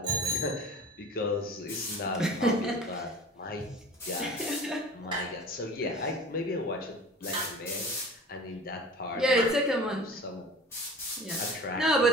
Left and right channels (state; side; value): normal; both; correlation 0.40